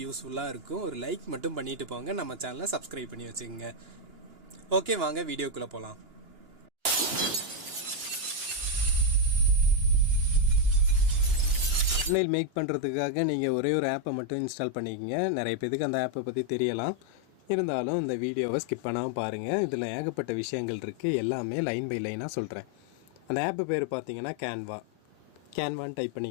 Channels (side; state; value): left; late; 2.9 ms